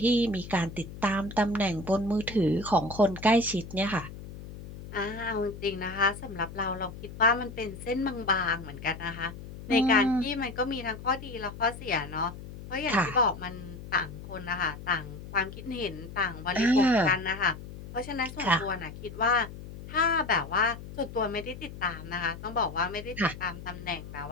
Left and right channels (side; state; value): left; noise; hum, 13 dB below the sound